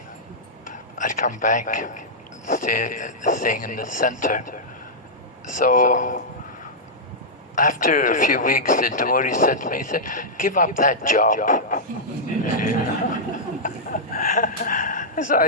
I'd come back, staying in the center. So after a few weeks, the devotee said to me, he said, give up that job. So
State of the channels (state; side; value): normal; both; correlation -0.09